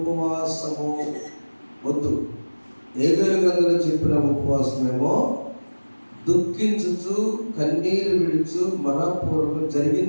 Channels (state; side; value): inverted; both; correlation -1.00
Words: వద్దు. హేబేలు గ్రంథంలో చెప్పిన ఉపవాసమేమో దుఃఖించుచు కన్నీరు విడుచు మనపూర్వకం